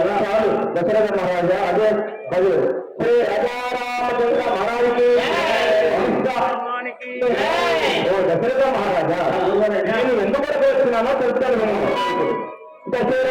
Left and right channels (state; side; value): identical; both; correlation 1.00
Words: చాలు దశరథ మహారాజా. అదే అది శ్రీ రాజారామచంద్ర మహారాజుకి ఓ దశరథ మహారాజా, నేను ఎందుకు వస్తున్నానో తెలుస్తాను.